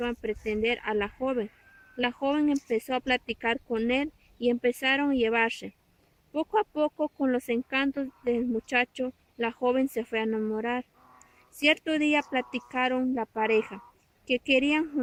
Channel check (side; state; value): both; identical; correlation 1.00